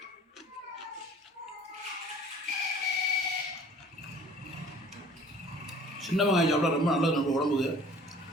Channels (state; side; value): normal; both; correlation 0.50